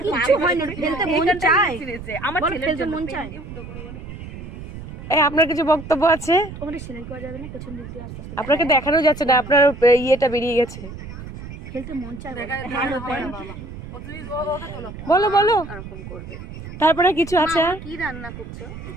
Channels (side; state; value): right; noise; rumble, 12 dB below the sound